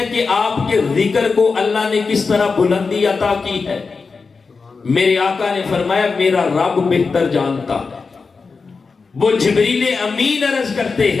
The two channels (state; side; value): quieter; right; 4.6 dB